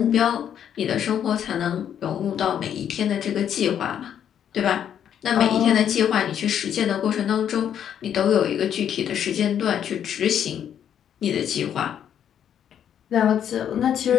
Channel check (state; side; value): quieter; right; 9.3 dB